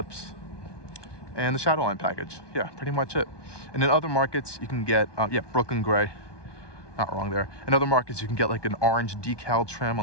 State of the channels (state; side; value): late; right; 1.2 ms